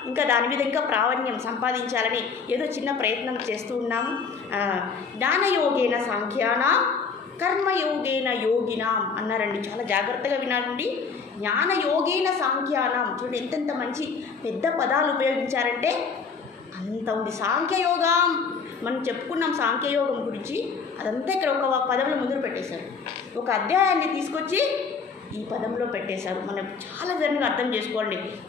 ఇంకా దాని మీద ఇంకా ప్రావీణ్యం సంపాదించాలని ఏదో చిన్న ప్రయత్నం చేస్తూ ఉన్నాము. జ్ఞానయోగేన సాంఖ్యానాం కర్మయోగేన యోగినాం అన్నారండి. చాలా జాగ్రత్తగా వినాలండి. జ్ఞానయోగేన సాంఖ్యానాం చూడండి ఎంతెంత మంచి పెద్ద పదాలు ఉపయోగించారంటే అంత ఉంది. సాంఖ్యయోగం మనం చెప్పుకున్నాం, సాంఖ్యయోగం గురించి అదంతా ఇక్కడ ఒక పదంలో ముందు పెట్టేశారు. ఒక అధ్యాయాన్ని తీసుకొచ్చి ఈ పదంలో పెట్టేశారు. మనం చాలా విధంగా అర్థం చేసుకోండి.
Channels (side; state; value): right; quieter; 5.4 dB